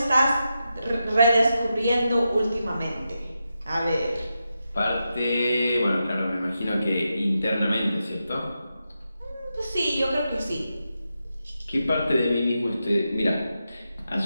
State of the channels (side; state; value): both; inverted; correlation -0.88